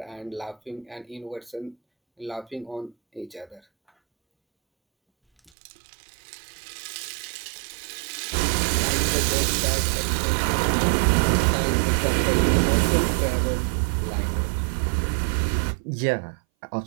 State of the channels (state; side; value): drops out; left; at 5.5 s